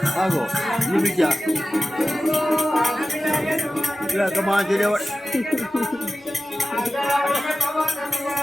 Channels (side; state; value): both; normal; correlation 0.95